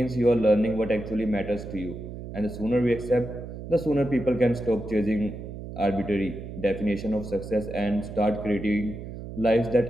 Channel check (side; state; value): right; noise; hum, 10 dB below the sound